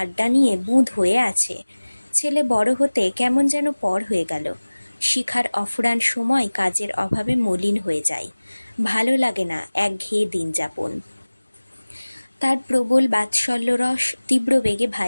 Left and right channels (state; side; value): inverted; both; correlation -1.00